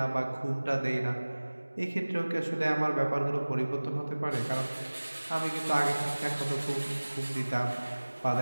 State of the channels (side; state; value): both; inverted; correlation -1.00